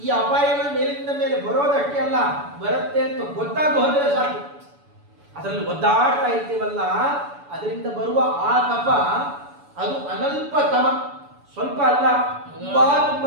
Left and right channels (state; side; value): late; left; 7.0 ms